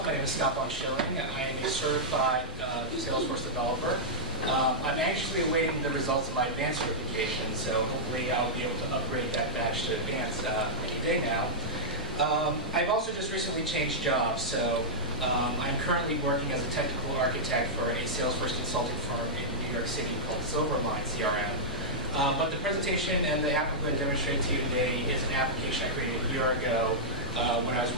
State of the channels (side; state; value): both; normal; correlation -0.10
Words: My name is VonSchilling. I am a certified Salesforce developer. I'm anxiously awaiting the results of my advanced certification, so hopefully I'll be able to upgrade that badge to advanced any day now. I've also just recently changed jobs, so I'm currently working as a technical architect for a Salesforce consulting firm in New York City called Silverline CRM. But the presentation and the app I'm going to demonstrate to you today is an application I created a year ago when I